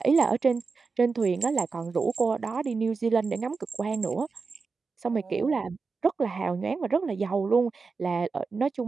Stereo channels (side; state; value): left; quieter; 4.6 dB